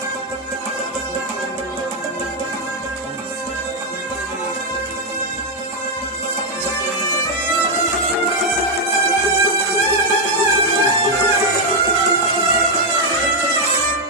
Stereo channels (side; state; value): both; normal; correlation 0.01